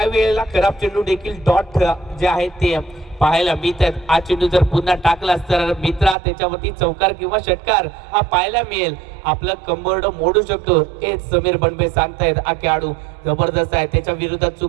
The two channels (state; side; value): drops out; left; at 6.2 s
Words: वेळेला खराब चेंडू देखील डॉट जे आहेत ते पाहायला मिळतात. हा चेंडू जर पुन्हा टाकलास तर मित्रा त्याच्यावरती चौकार किंवा षटकार हा पाहायला मिळेल. आपलं कंबरड मोडू शकतो हे समीर बनबे सांगतायत. हा खेळाडू जबरदस्त आहे. त्याच्या विरोधात